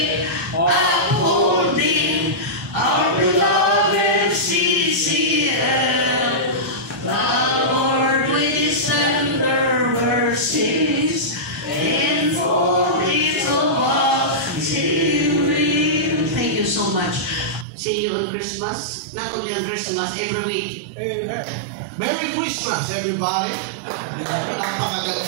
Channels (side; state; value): left; drops out; at 17.7 s